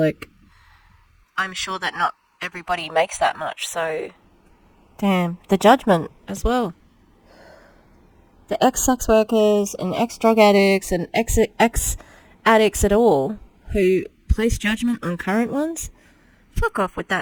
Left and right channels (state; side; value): identical; both; correlation 1.00